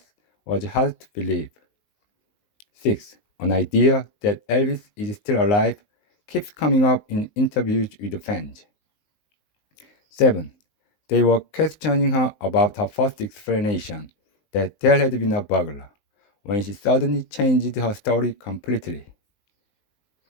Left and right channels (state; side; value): late; right; 19 ms